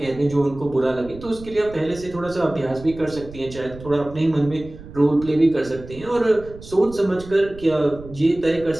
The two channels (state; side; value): noise; right; rumble, 16 dB below the sound